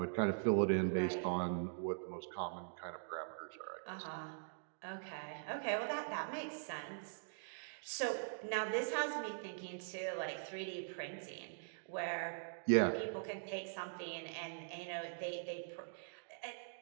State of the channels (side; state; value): left; silent; digital silence